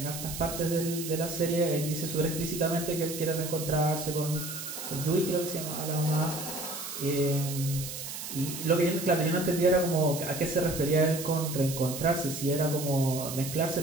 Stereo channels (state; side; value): noise; right; hiss, 8 dB below the sound